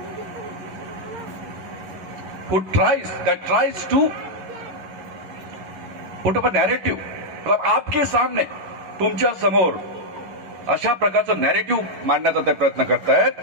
who tries to put up a narrative. मतलब आपके सामने, तुमच्या समोर अशा प्रकारचं नॅरेटिव्ह मांडण्याचा ते प्रयत्न करतायत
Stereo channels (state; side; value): late; left; 11 ms